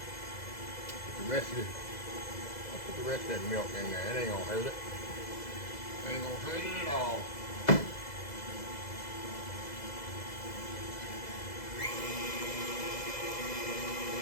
I'll put the rest of that milk in there. It ain't gonna hurt it. Ain't gonna hurt it at all.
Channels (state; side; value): late; right; 2.0 ms